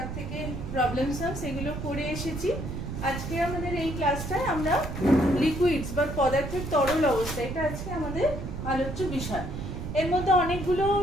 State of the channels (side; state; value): right; noise; rumble, 6 dB below the sound